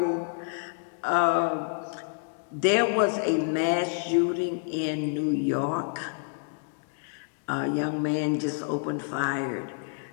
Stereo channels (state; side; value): silent; right; digital silence